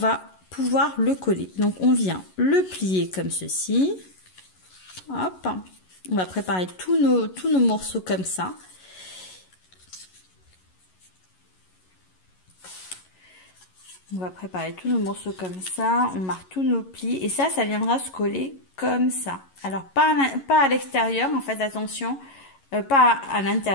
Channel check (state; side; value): late; right; 11 ms